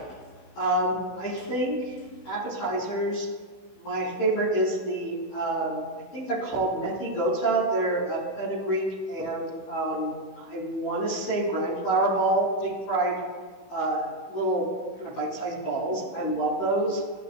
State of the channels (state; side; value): late; right; 16 ms